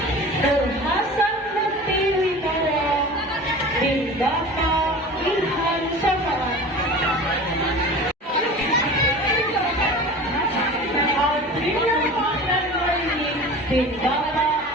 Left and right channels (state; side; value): normal; both; correlation 0.37